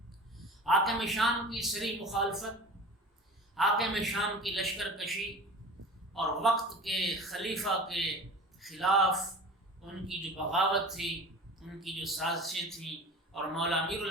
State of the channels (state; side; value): normal; both; correlation 0.37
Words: حاکم شام کی سری مخالفت، حاکم شام کی لشکر کشی اور وقت کے خلیفہ کے خلاف ان کی جو بغاوت تھی، ان کی جو سازشیں تھیں، اور مولا امیر